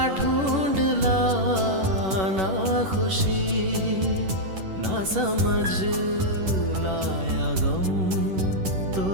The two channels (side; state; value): left; late; 11 ms